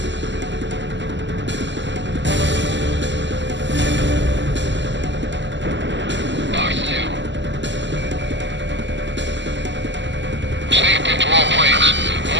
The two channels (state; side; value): late; left; 0.53 ms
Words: Box 2. Stay pinned to all planes.